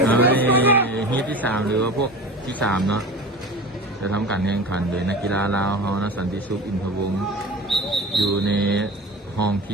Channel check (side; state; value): both; normal; correlation 0.34